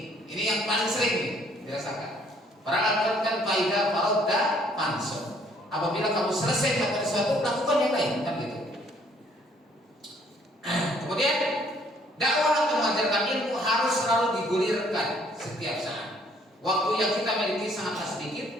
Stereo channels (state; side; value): normal; both; correlation 0.63